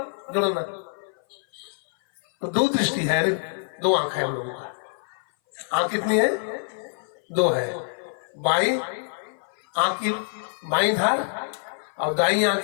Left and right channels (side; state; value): right; silent; 58 dB below the other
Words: जोड़ना। तो दो दृष्टि है, दो आंख है हम लोगों का। आंख कितनी है? दो है। बाई आंख की बाई धार और दाई आंख